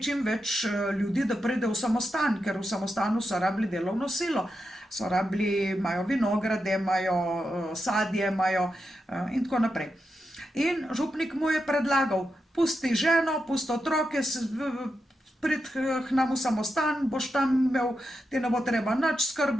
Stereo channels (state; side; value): normal; both; correlation 0.87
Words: čim več ljudi, da pride v samostan, ker v samostanu so rabili delovno silo. So rabili, imajo vinograde, imajo sadje, imajo in tako naprej. In župnik mu je predlagal, pusti ženo, pusti otroke, prid k nam v samostan, boš tam imel, ti ne bo treba nič